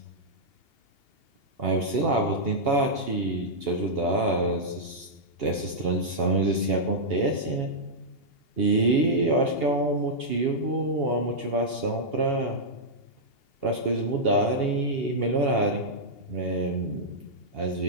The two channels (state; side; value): late; right; 2.8 ms